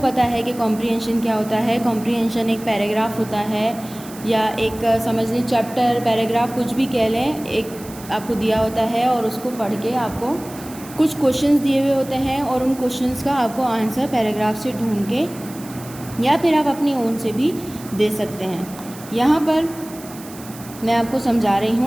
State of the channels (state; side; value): noise; right; hiss, 18 dB below the sound